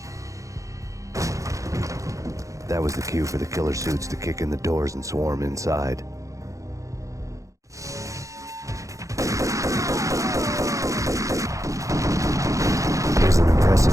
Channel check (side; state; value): left; late; 0.15 ms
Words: That was the cue for the killer suits to kick in the doors and swarm inside. It was an impressive